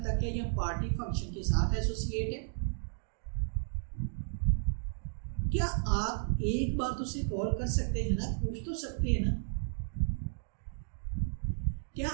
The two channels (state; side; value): silent; left; digital silence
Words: तक है या पार्टी फंक्शन के साथ एसोसिएट है? क्या आप एक बार तो उसे कॉल कर सकते हैं ना, पूछ तो सकते हैं ना? क्या